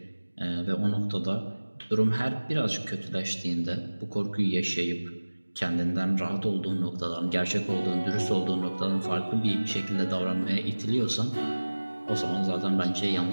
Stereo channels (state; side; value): inverted; both; correlation -1.00